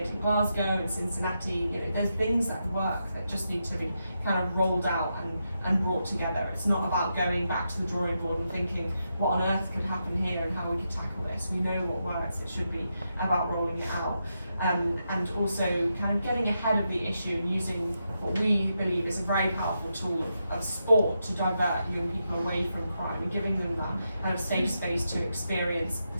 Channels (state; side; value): inverted; both; correlation -0.85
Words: in Glasgow and Cincinnati. You know, there's things that work that just need to be kind of rolled out and brought together. It's not about going back to the drawing board and thinking what on earth could happen here and how we could tackle this. We know what works. It should be about rolling it out. And also kind of getting ahead of the issue and using what we believe is a very powerful tool of sport to divert young people away from crime and giving them that kind of safe space to experience